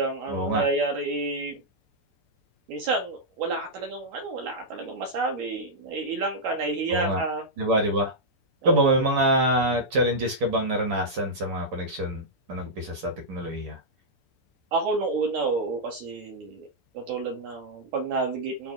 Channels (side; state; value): left; late; 7.6 ms